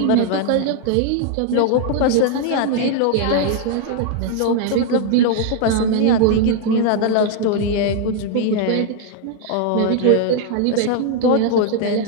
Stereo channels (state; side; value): different; both; correlation 0.00